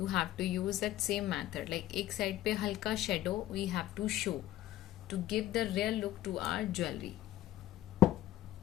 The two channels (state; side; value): quieter; right; 14.0 dB